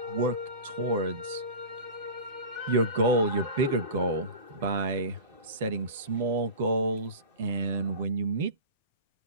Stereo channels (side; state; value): both; inverted; correlation -0.32